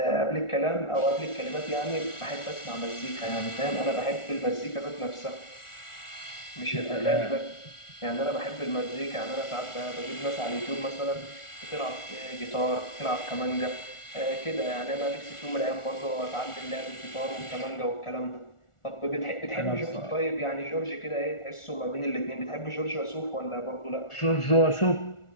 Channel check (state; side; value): late; right; 1.4 ms